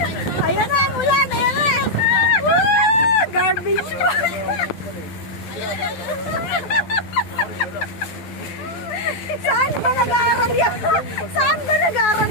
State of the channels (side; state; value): right; late; 12 ms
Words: Ayan na ang ulan, ayan na. Garbage bag. Saan ba nag-aaral yan? Saan ba nag-aaral